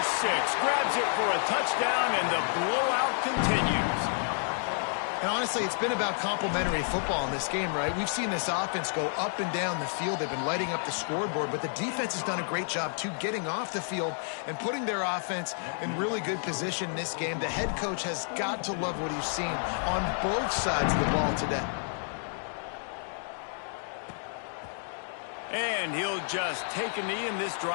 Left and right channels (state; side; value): silent; right; 58 dB below the other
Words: 6. Grabs it for a touchdown, and the blowout continues. And honestly, it's been about complementary football in this game, right? We've seen this offense go up and down the field. They've been lighting up the scoreboard, but the defense has done a great job, too, getting off the field and putting their offense in really good position in this game. The head coach has got to love what he's seen on both sides of the ball today. And he'll just take a knee, and this